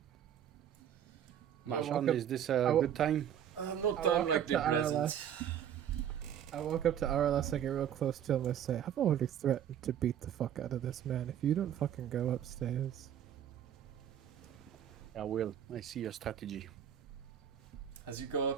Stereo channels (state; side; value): quieter; left; 9.7 dB